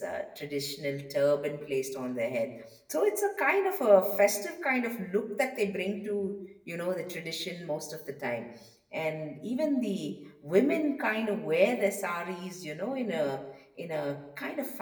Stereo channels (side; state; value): both; identical; correlation 1.00